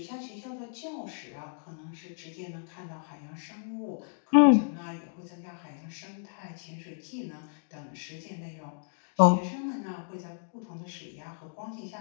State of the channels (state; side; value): silent; right; digital silence